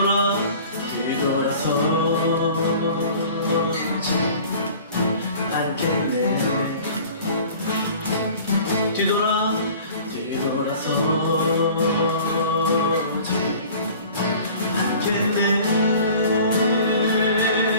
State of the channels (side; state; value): both; inverted; correlation -0.46